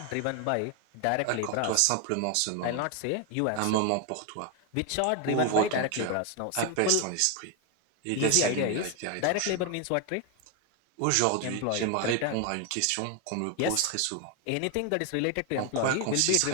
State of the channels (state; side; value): different; both; correlation 0.01